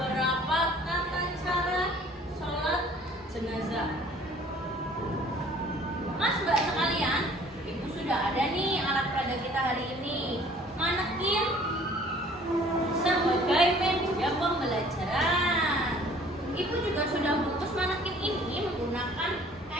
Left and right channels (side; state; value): both; normal; correlation 0.53